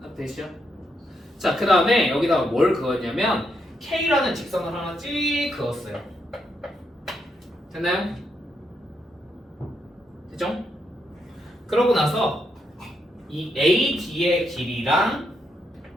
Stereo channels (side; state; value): both; normal; correlation 0.79